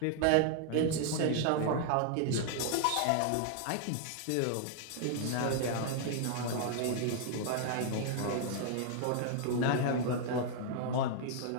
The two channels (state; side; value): different; both; correlation 0.00